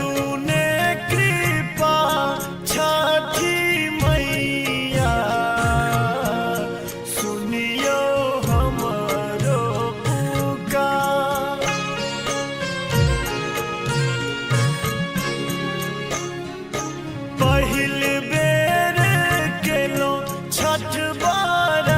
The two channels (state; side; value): identical; both; correlation 1.00